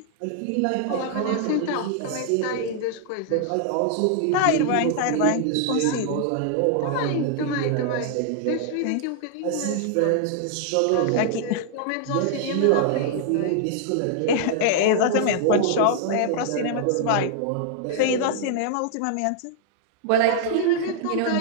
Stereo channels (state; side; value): different; both; correlation -0.01